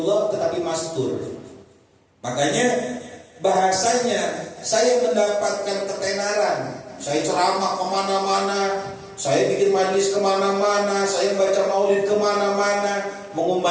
tetapi mastur. Makanya bahasanya saya mendapatkan ketenaran. Saya ceramah kemana-mana, saya bikin majlis kemana-mana, saya baca maulid kemana-mana,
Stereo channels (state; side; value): identical; both; correlation 1.00